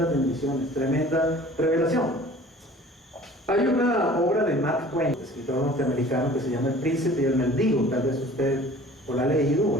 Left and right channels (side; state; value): both; normal; correlation 0.47